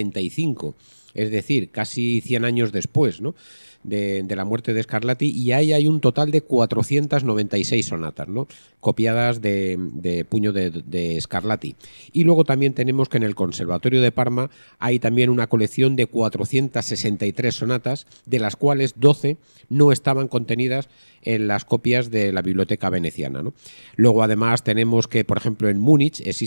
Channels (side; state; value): both; inverted; correlation -1.00